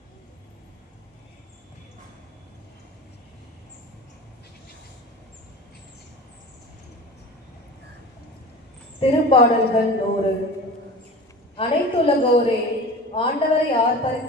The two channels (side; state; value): both; normal; correlation 0.36